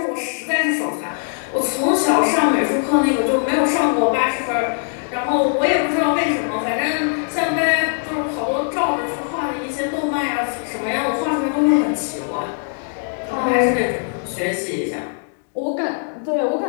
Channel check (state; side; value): silent; right; 65 dB below the other